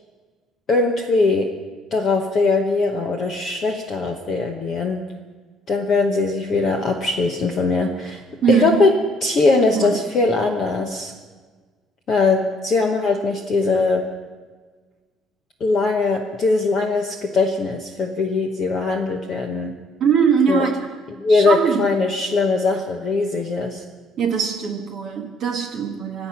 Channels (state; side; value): normal; both; correlation 0.64